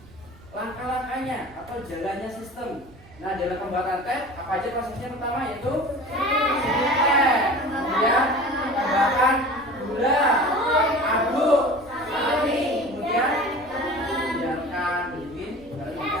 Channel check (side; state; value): right; noise; rumble, 24 dB below the sound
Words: langkah-langkahnya atau jalannya sistem. Nah, dalam pembuatan teh apa aja prosesnya? Pertama yaitu teh, kemudian tambahkan gula, aduk, saring, kemudian biarkan dingin baru